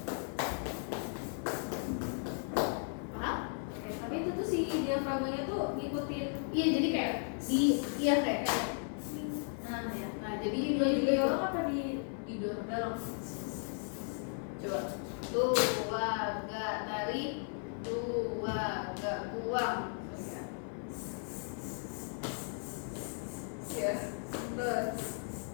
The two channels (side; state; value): right; silent; 54 dB below the other